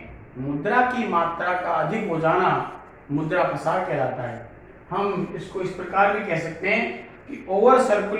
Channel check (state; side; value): identical; both; correlation 1.00